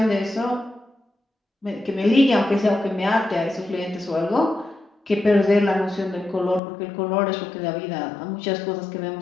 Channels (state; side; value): drops out; right; at 6.6 s